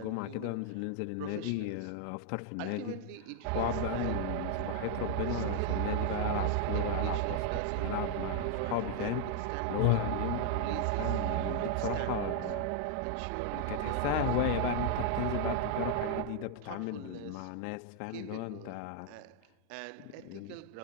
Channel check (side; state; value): both; different; correlation 0.00